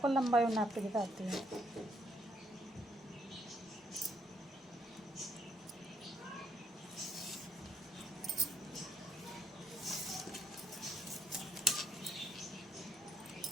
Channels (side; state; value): both; normal; correlation 0.71